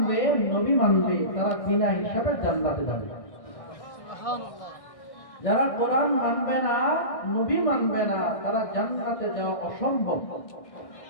নবী মানবে, তারা বিনা হিসাবে জান্নাতে যাবে। যারা কোরআন মানবে না, নবী মানবে না, তারা জান্নাতে যাওয়া অসম্ভব।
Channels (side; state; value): right; late; 1.6 ms